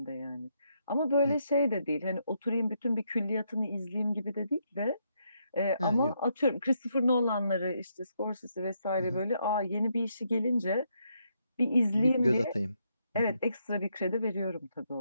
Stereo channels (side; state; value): both; inverted; correlation -0.77